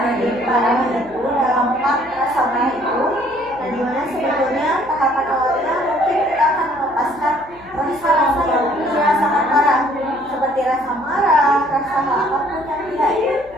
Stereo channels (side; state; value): left; noise; hum, 25 dB below the sound